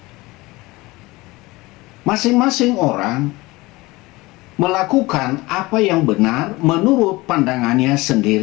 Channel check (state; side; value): quieter; right; 21.3 dB